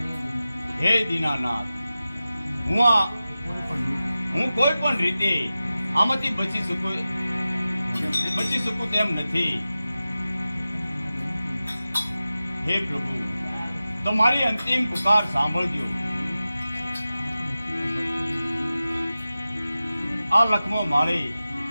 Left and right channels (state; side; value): inverted; both; correlation -0.95